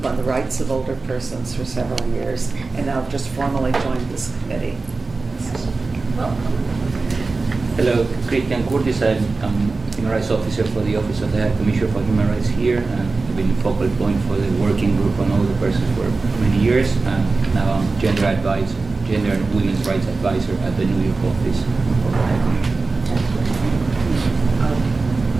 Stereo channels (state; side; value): quieter; left; 3.8 dB